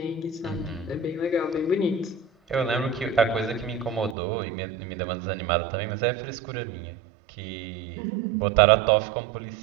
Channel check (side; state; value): left; drops out; at 4.2 s